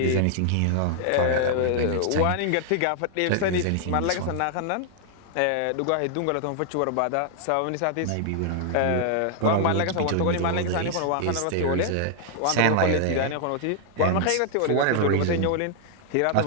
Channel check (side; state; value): both; different; correlation -0.01